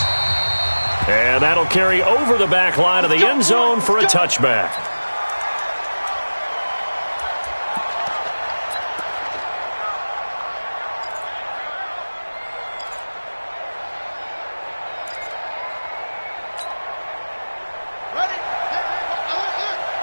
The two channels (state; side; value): inverted; both; correlation -1.00